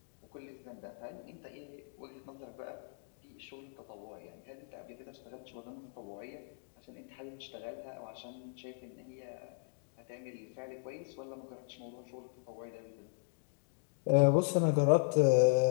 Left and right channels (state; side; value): silent; right; digital silence